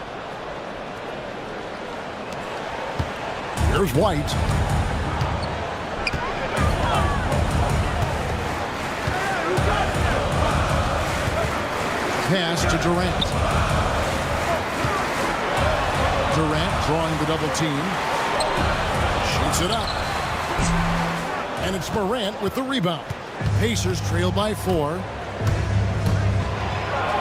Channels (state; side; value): identical; both; correlation 1.00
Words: Here's White. Pass to Durant. Durant drawing the double team. Shoots it up. And it's Morant with the rebound. Pacers trail by 4.